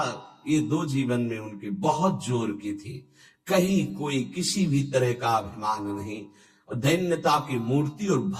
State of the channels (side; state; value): both; identical; correlation 1.00